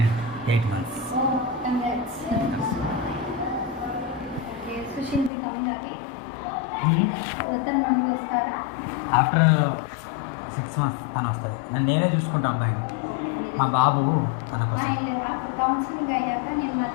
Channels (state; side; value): drops out; right; at 5.3 s